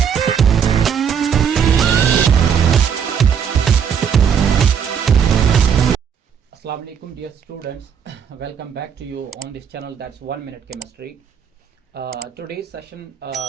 Assalamu alaikum dear students, welcome back to you on this channel, that's 1 minute chemistry. Today's session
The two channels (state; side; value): quieter; left; 7.5 dB